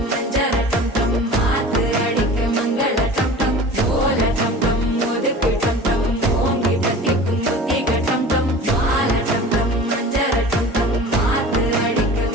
மஞ்சர டம் டம் மாத்து அடிக்க மங்கள டம் டம் ஓல டம் டம் ஒதுக்கு டம் டம் ஓங்கி தட்டிக்கும் புத்திக டம் டம் மால டம் டம் மஞ்சர டம் டம் மாத்து அடிக்க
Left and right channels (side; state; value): both; normal; correlation 0.39